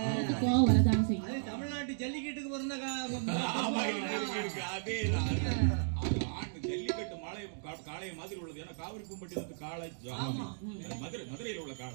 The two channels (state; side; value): silent; left; digital silence